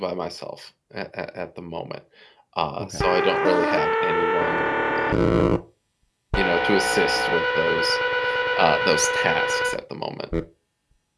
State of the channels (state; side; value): identical; both; correlation 1.00